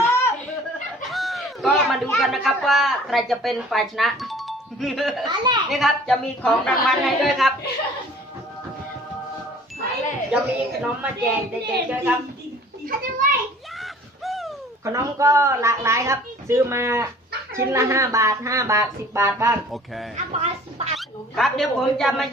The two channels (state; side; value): normal; both; correlation 0.50